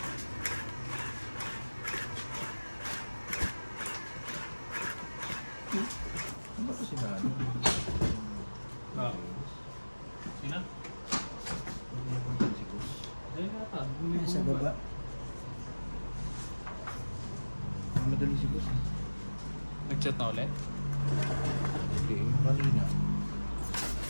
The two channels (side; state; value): both; inverted; correlation -1.00